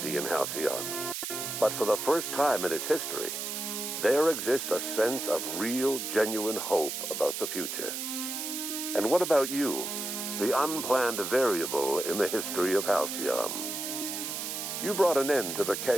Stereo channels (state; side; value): noise; right; hiss, 4 dB below the sound